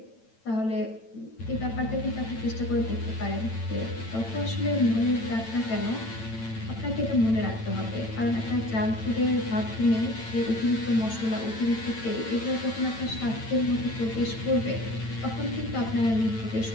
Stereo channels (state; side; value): late; right; 9.0 ms